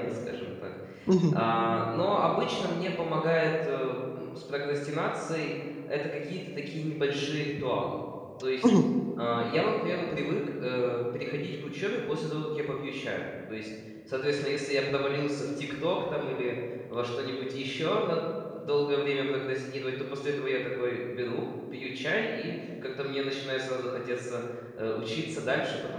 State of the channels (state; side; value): identical; both; correlation 1.00